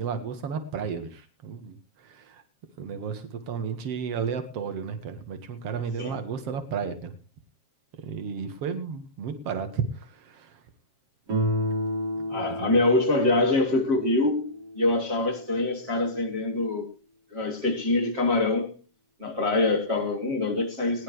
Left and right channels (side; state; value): left; late; 7.5 ms